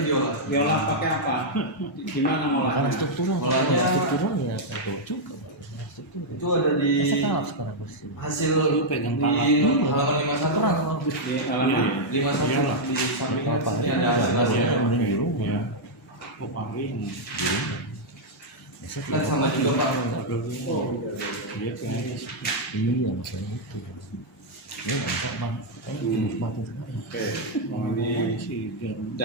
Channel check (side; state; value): both; normal; correlation -0.04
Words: diolah. Diolah pakai apa? Gimana Karena ngolahnya? struktural, kalau Olahnya- nggak struktural ya tahu juga. Struktural. Itu ada di Saya tahu sekarang posisi. hasil Lu pegang di pala. halaman 51 Aturan, Pak. Pak. Di halaman 51 Iyalah. di sampingnya Apa sini aja ada nggak hasil. tahu ya, Iya. mending di rumah. Iya. Oh, paling. Saya Kan tidak sama tahu. juga Pak. Iya, kayaknya. Iya, maksudnya itu. Ini nggak bisa bang. Ini mati sekali. Oke, oh, ini Si Garuda